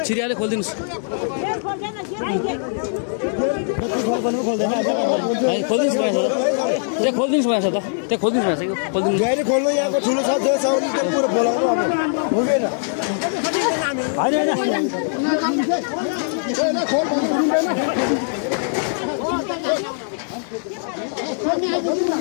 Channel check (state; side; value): silent; right; digital silence